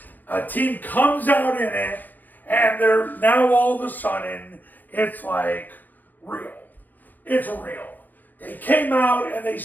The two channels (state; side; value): late; right; 0.089 ms